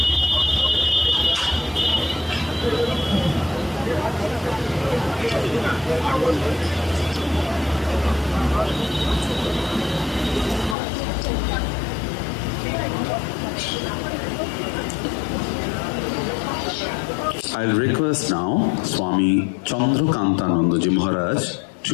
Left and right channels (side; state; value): right; drops out; at 10.8 s